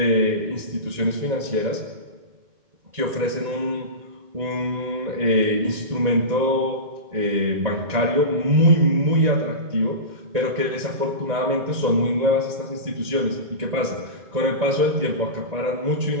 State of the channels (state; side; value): late; left; 1.9 ms